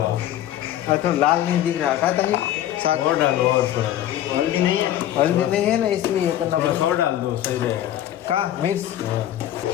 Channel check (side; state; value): right; quieter; 12.4 dB